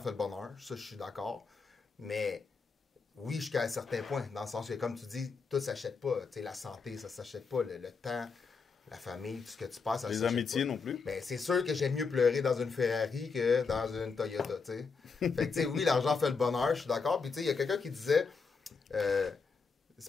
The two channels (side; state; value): right; quieter; 5.0 dB